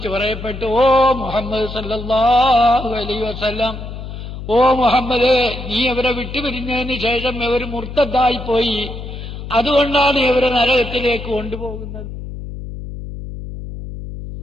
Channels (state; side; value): noise; left; hum, 9 dB below the sound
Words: പറയപ്പെട്ടു, ഓ മുഹമ്മദ് സല്ലല്ലാഹു അലൈഹി വസല്ലം, ഓ മുഹമ്മദ്, നീ അവരെ വിട്ടുപിരിഞ്ഞതിന് ശേഷം ഇവർ മുർത്തദ്ദായിപ്പോയി, അതുകൊണ്ടാണ് ഇവരെ നരകത്തിലേക്ക് കൊണ്ടുപോകുന്നത്.